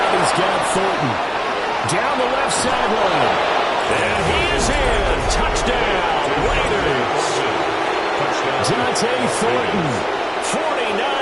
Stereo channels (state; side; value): identical; both; correlation 1.00